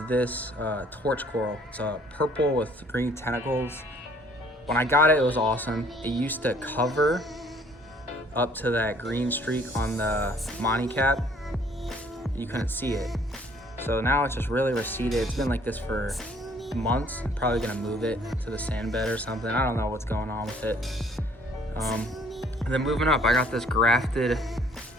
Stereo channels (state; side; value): normal; both; correlation 0.59